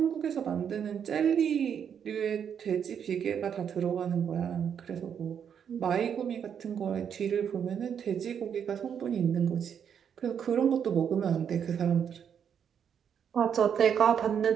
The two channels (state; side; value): quieter; left; 8.0 dB